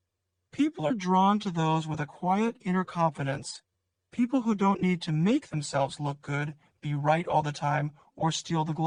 People are drawn to those with a quiet inner confidence, people who don't need to make themselves look good, be right all the time, or steal the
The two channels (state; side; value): identical; both; correlation 1.00